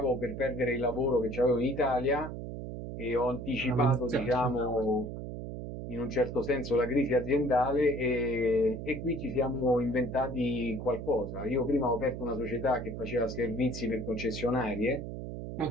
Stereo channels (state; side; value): noise; right; hum, 7 dB below the sound